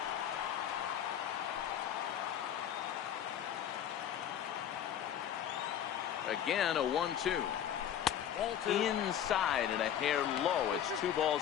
Again, a 1-2. Inside and a hair low. It's 2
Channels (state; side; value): quieter; right; 9.9 dB